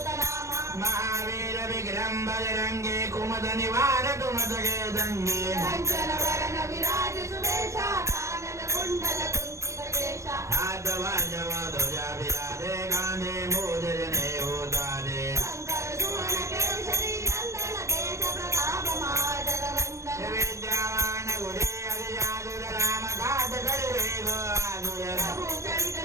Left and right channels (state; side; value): late; left; 0.14 ms